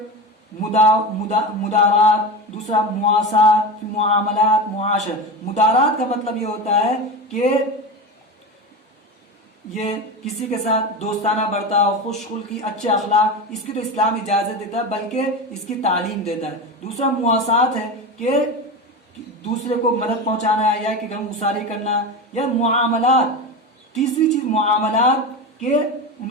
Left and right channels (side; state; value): both; normal; correlation 0.23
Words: مدارات، دوسرا مواسات، معاملات، معاشر. مدارات کا مطلب یہ ہوتا ہے کہ یہ کسی کے ساتھ دوستانہ برتاؤ، خوش خلقی، اچھے اخلاق، اس کی تو اسلام اجازت دیتا ہے بلکہ اس کی تعلیم دیتا ہے. دوسرا مواسات ہے کہ دوسرے کو مدد پہنچانا یا کہ غم گساری کرنا. یا معاملات، تیسری چیز معاملات کہ ان